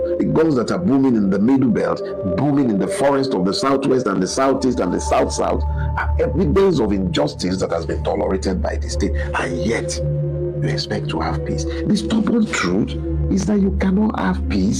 the guns that are booming in the middle belt, booming in the forest of the southwest and the southeast and the south-south, are evidence of injustice that has been tolerated by the state, and yet you expect to have peace. The stubborn truth is that you cannot have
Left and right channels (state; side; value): identical; both; correlation 1.00